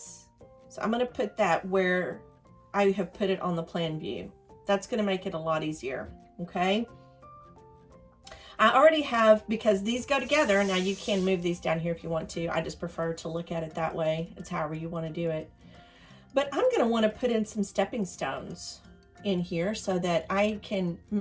So I'm going to put that where I have put it on the plan view. That's going to make it a lot easier. Okay. I already have, because these go together. Now you can move these down here if you want to. I just prefer to look at it that way. It's however you want to do it. But I'm going to want to put in some stepping stones in here so that I can,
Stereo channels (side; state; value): both; identical; correlation 1.00